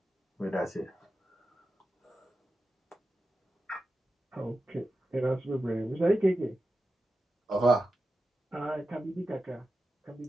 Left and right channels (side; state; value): both; normal; correlation 0.91